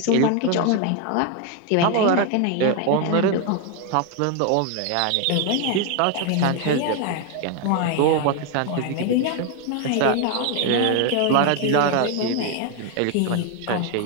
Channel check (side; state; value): both; different; correlation 0.01